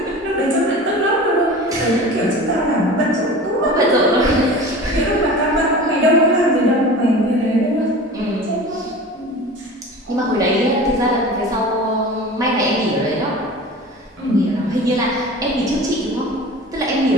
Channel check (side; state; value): both; normal; correlation 0.36